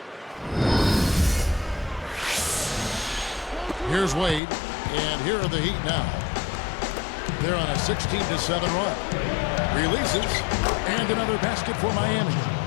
Here's Wade, and here are the Heat now. They're on a 16-7 run. Releases, and another basket for Miami.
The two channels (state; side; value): drops out; right; at 4.4 s